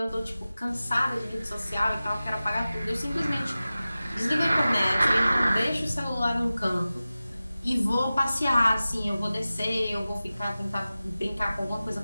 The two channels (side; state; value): both; inverted; correlation -0.96